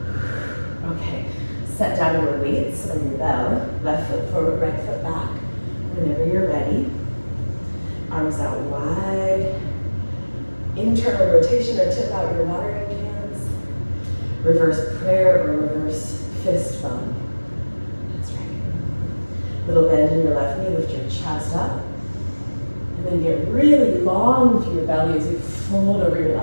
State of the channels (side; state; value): both; inverted; correlation -1.00